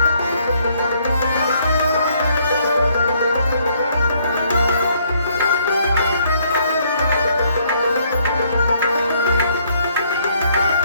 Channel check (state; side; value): inverted; both; correlation -0.67